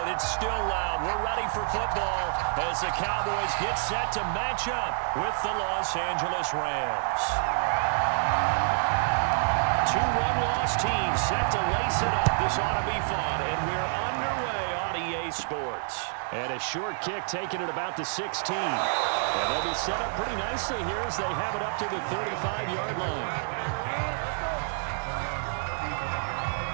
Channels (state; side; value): silent; left; 59 dB below the other